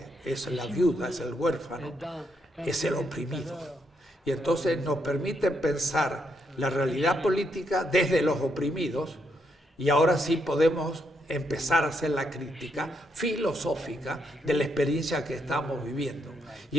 es la viuda, es el huérfano, es el oprimido. Y entonces nos permite pensar la realidad política desde los oprimidos, y ahora sí podemos empezar a hacer la crítica filosófica de la experiencia que estamos viviendo. Y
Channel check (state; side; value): normal; both; correlation 0.78